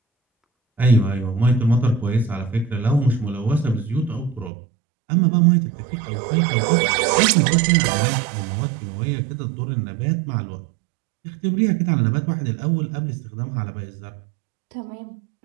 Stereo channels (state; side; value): drops out; left; at 4.5 s